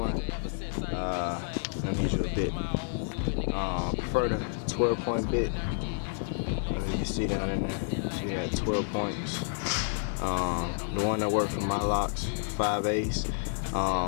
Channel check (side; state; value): right; silent; digital silence